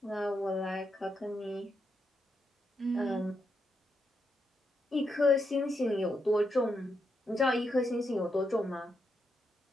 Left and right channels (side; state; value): both; normal; correlation 0.82